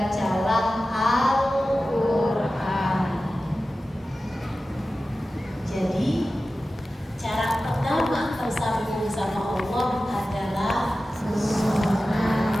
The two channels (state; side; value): normal; both; correlation 0.95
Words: Al-Quran. Jadi cara pertama tersambung sama Allah adalah sholat.